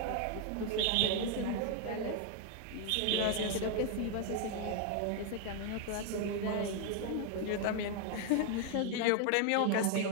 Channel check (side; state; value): both; different; correlation 0.00